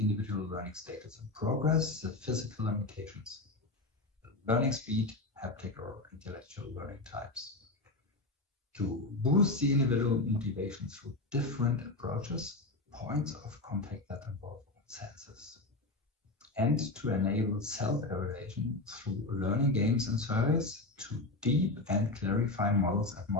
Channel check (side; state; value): right; quieter; 3.0 dB